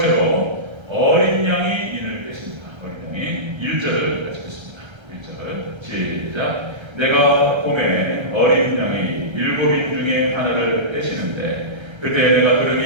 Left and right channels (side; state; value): left; late; 1.3 ms